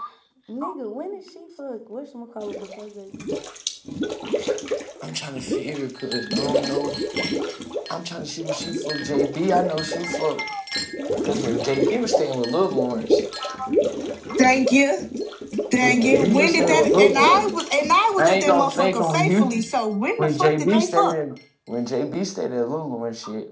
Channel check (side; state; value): both; identical; correlation 1.00